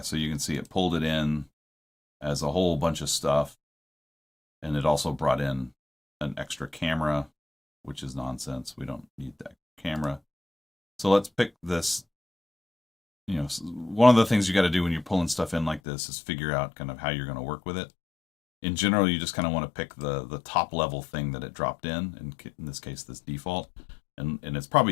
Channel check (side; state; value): right; drops out; at 15.8 s